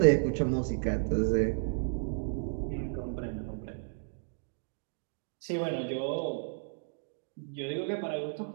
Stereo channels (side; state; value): left; silent; digital silence